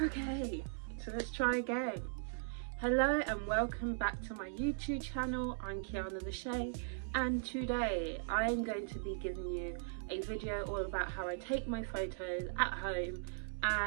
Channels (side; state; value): left; silent; digital silence